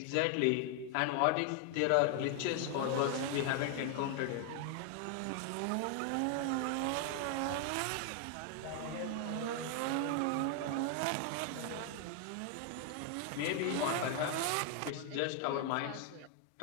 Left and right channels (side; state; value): both; different; correlation 0.00